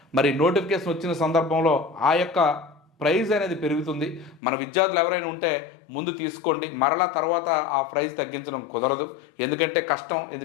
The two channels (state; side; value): drops out; right; at 4.4 s